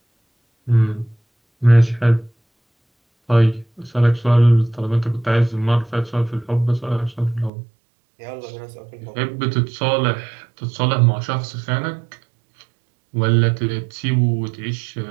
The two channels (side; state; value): left; drops out; at 7.5 s